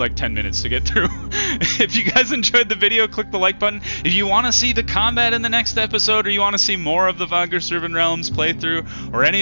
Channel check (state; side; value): inverted; both; correlation -1.00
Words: 10 minutes to get through. If you guys enjoyed the video, click the like button. If you want to see the combat in the next episode, or you want to see more of the Vagrus Riven Realms playthrough, or any